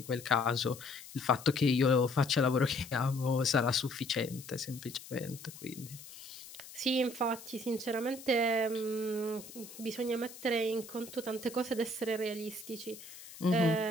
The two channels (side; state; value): left; noise; hiss, 16 dB below the sound